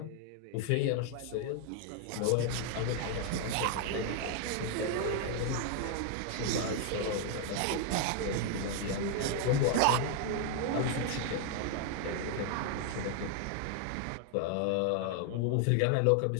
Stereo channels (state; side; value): different; both; correlation 0.00